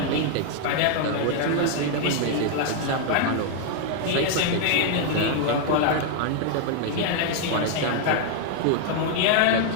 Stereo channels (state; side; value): different; both; correlation 0.00